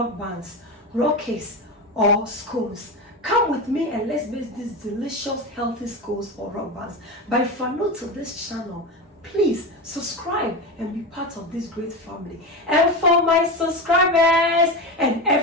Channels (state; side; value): normal; both; correlation 0.20